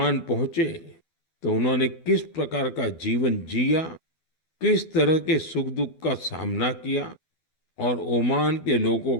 पहुंचे तो उन्होंने किस प्रकार का जीवन जिया, किस तरह के सुख दुख का सामना किया और ओमान के लोगों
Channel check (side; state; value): right; late; 12 ms